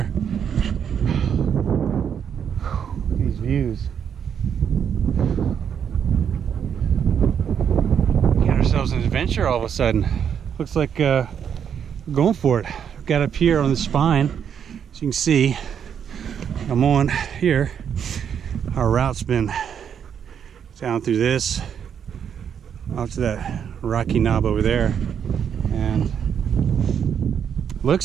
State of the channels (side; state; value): left; quieter; 8.0 dB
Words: These views. We got ourselves an adventure all of a sudden. Looks like we're going for it. We've got up here on the spine, as you can see. I'm on here. Our route's been down through this, up to that rocky knob over there, and